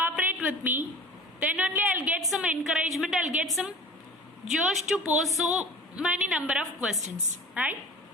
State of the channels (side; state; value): both; normal; correlation 0.41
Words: with me. Then only I'll get some encouragement. I'll get some josh to post so many number of questions. Right?